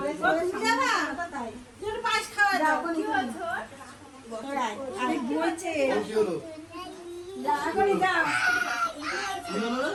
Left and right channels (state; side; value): identical; both; correlation 1.00